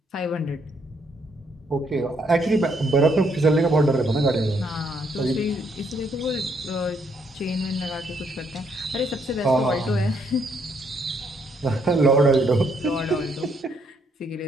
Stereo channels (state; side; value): normal; both; correlation 0.72